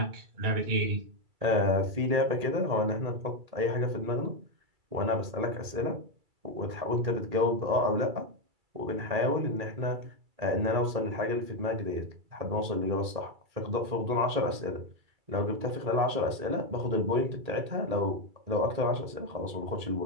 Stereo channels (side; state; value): left; late; 2.3 ms